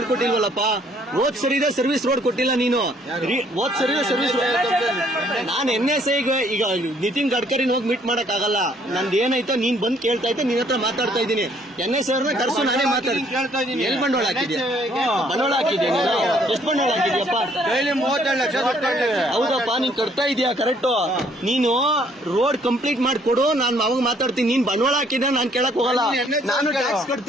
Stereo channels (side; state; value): both; normal; correlation 0.64